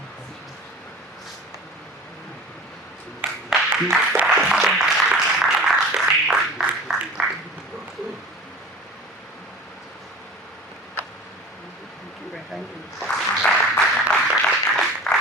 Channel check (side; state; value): both; normal; correlation 0.39